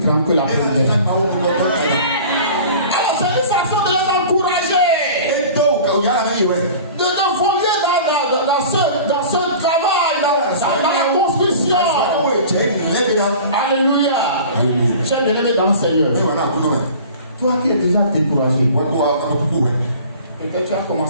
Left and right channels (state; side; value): inverted; both; correlation -0.42